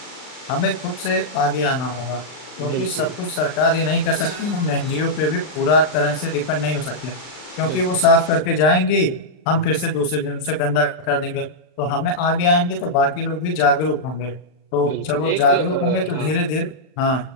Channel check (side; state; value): right; late; 39 ms